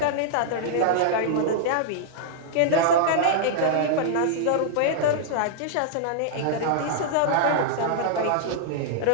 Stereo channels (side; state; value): both; different; correlation -0.01